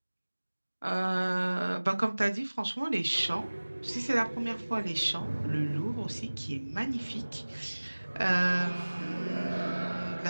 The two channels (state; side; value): inverted; both; correlation -1.00